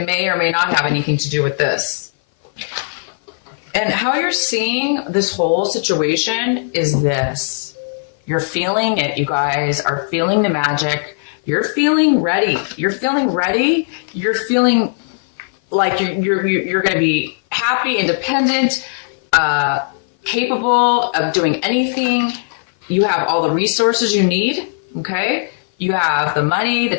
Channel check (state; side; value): silent; right; 56 dB below the other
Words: may or may not have anything to do with this. And how you're seeing this whole situation is this. You're feeling it. You guys are feeling the magic. You're feeling ready. You're feeling ready. You're feeling like you're going to be happy, independent, capable of doing anything. You have all the resources you need, okay? You have the money, the